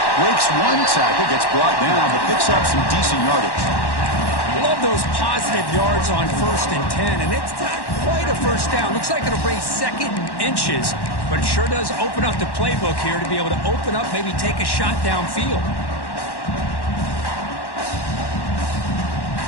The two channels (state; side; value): late; right; 1.1 ms